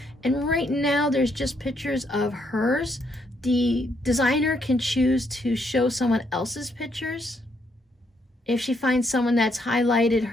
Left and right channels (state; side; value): normal; both; correlation 0.74